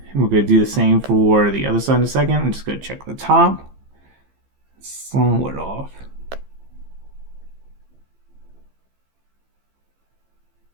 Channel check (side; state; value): left; late; 15 ms